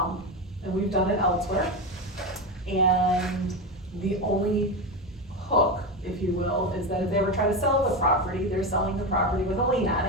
we've done it elsewhere. And the only hook, if you will, is that if they ever try to sell the property, they're selling the property with a lien on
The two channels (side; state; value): both; normal; correlation 0.16